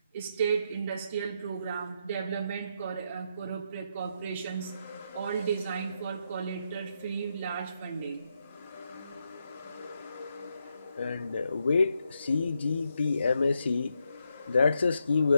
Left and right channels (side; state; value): both; inverted; correlation -0.81